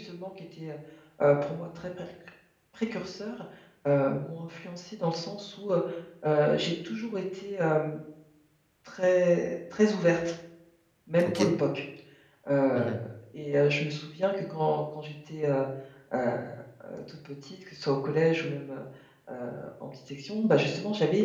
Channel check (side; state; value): both; identical; correlation 1.00